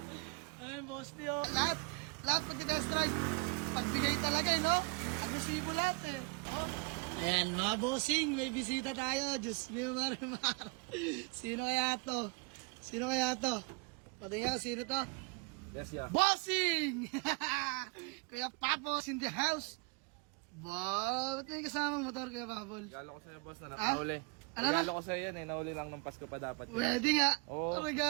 Ay, boss nyo. Lahat pag-test drive. Pagbigay talaga, no? Agresibo lahat Oh. Ayan, mga bossing, may bisita tayo. Diyos mio, marimar. Sino kaya to? Patingin, sino to? Yes, yeah. Bossing! Kuya Papos in the house. Wow, ba't may kasamang motor, Kuya Papol? Regalo ko sa'yo, boss, na nakauli. Ano na? Regalo ko sa'yo yan nauli lang ng Pasko pa dapat. Pwede nga. Oo.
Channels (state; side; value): quieter; left; 31.2 dB